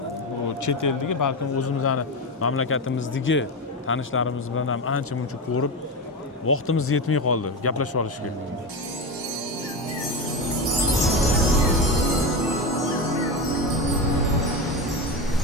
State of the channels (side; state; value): both; normal; correlation 0.18